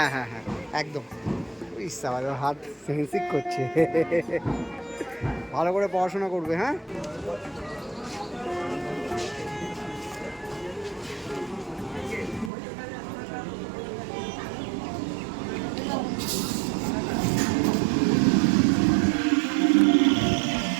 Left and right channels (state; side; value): drops out; left; at 12.5 s